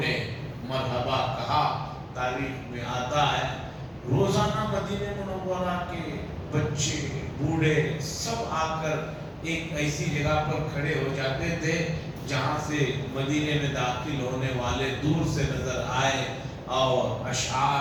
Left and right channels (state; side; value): identical; both; correlation 1.00